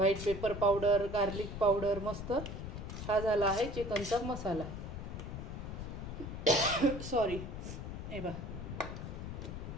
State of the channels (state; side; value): noise; left; rumble, 7 dB below the sound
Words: pepper powder, garlic powder, मस्त हा झाला आहे चिकनचा मसाला. सॉरी, हे बघा.